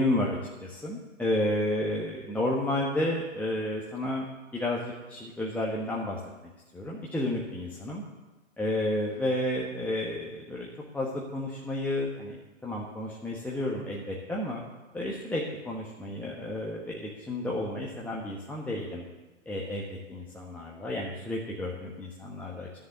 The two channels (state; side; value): normal; both; correlation 0.50